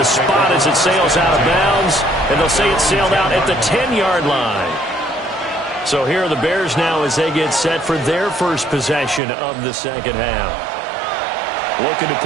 spot as it sails out of bounds. And they'll say it sailed out at the 10-yard line. So here are the Bears now as they get set for their first possession of the second half. Looking to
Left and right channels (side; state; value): left; drops out; at 9.2 s